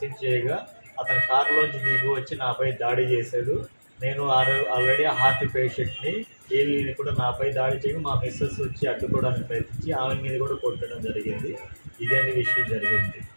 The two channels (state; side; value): inverted; both; correlation -1.00